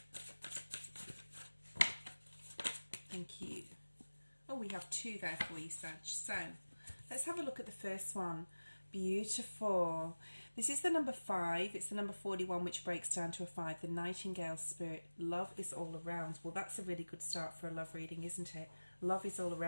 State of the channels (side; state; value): both; inverted; correlation -1.00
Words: Thank you. Oh, we have 2 there for you, Sag. So let's have a look at the first one. Beautiful. This is the number 5. It's the number 41, which breaks down to a 5. The Nightingale Spirit. Love is all around. Well, that's a really good start for a love reading, isn't it? Love is all